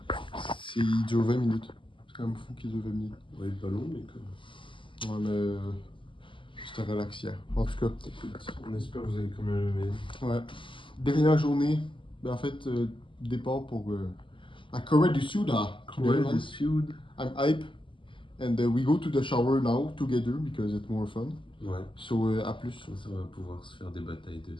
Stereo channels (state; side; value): late; right; 0.25 ms